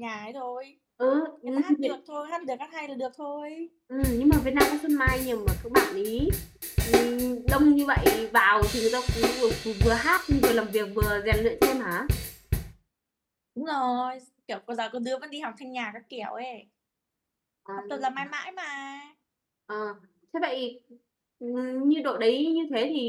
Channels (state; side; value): identical; both; correlation 1.00